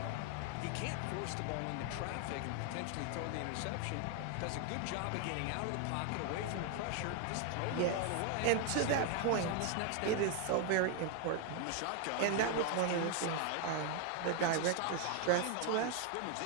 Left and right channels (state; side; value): different; both; correlation 0.01